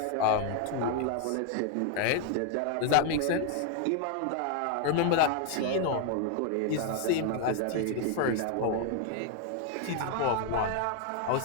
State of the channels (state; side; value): different; both; correlation 0.00